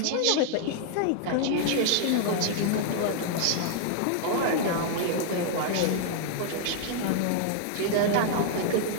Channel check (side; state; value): both; different; correlation 0.00